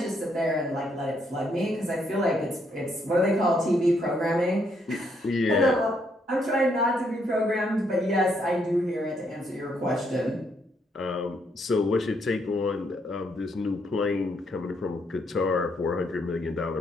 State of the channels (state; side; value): normal; both; correlation 0.74